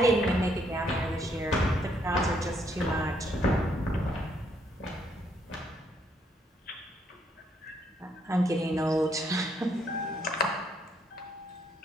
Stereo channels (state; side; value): normal; both; correlation 0.71